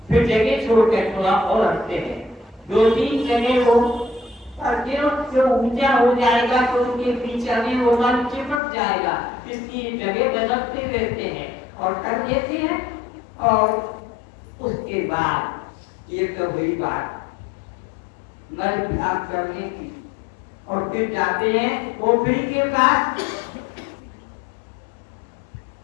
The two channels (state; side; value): drops out; right; at 8.6 s